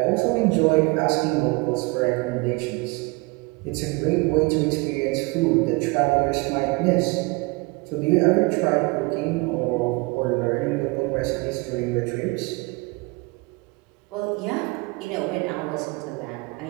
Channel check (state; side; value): quieter; left; 26.3 dB